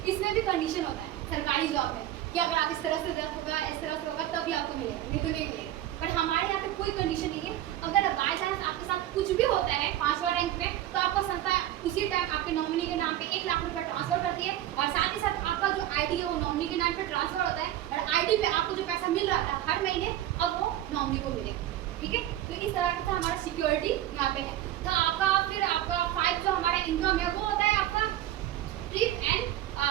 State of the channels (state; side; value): quieter; left; 13.0 dB